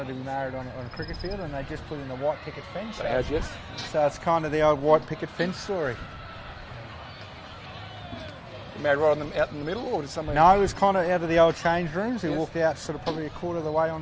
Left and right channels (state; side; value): identical; both; correlation 1.00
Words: to be married on a cricket field, and they just put in a white picket fence. Yes. So it's kind of the old white picket fence story. Married right out in the middle, or just somewhere? No, it was kind of out of the old change rooms. We walked out sort of probably a quarter of the way